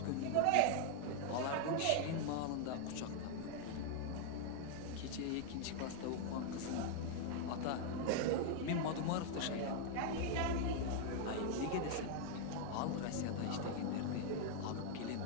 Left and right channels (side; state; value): both; different; correlation 0.00